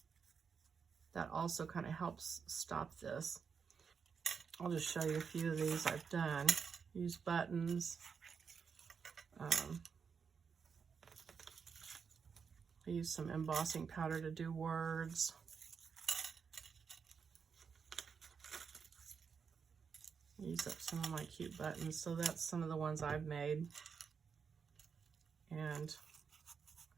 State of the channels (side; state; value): left; quieter; 6.2 dB